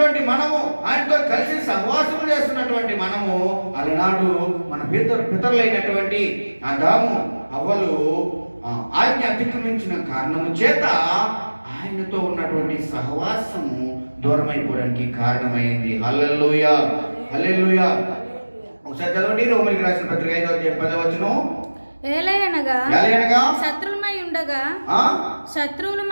మనము, ఆయనతో కలిసి సహవాసం చేస్తున్నటువంటి మనము, అలనాడు మన పితరులైనటువంటి ఆదాము హవ్వలు ఆజ్ఞ అతిక్రమించిన కారణము చేత ఆయనతో ఉన్నటువంటి సహవాసము దూరమైపోవడానికి కారణమైంది. హల్లెలూయా, హల్లెలూయా. ఒకసారి చదవండి రోమీయులకు రాసిన పత్రిక 5:10. ఏలయనగా శత్రువులమై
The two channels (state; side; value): inverted; both; correlation -1.00